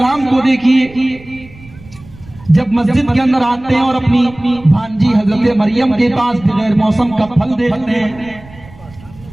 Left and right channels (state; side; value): noise; right; rumble, 21 dB below the sound